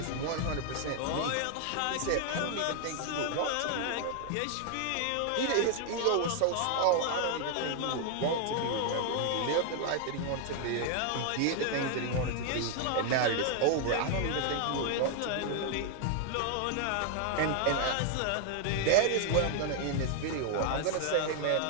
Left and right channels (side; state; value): both; different; correlation 0.00